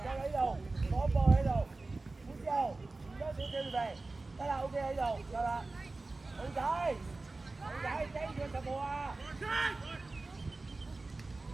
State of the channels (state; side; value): quieter; left; 3.4 dB